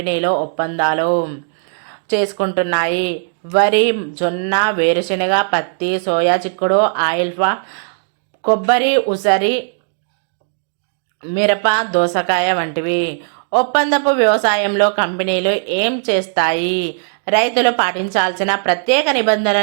ఒప్పందాలు చేసుకుంటున్నాయి? వరి, జొన్న, వేరుశెనగ, పత్తి, సోయా చిక్కుడు, ఆయిల్ఫా, కొబ్బరి, ఉసిరి, మిరప, దోసకాయ వంటివి. ఒప్పందపు వ్యవసాయంలో కంపెనీలు ఏం చేస్తాయి? రైతులు పాటించాల్సిన ప్రత్యేక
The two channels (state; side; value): silent; left; digital silence